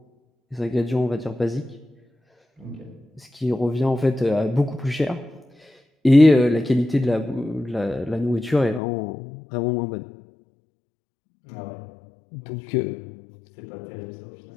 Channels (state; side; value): drops out; right; at 8.8 s